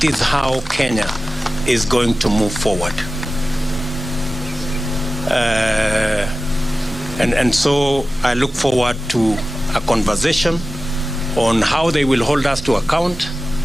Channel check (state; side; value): normal; both; correlation 0.95